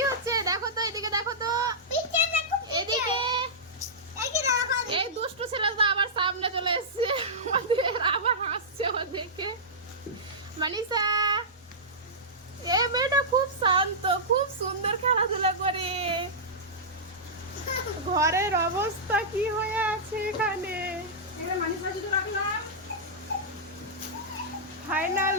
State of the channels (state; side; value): normal; both; correlation -0.13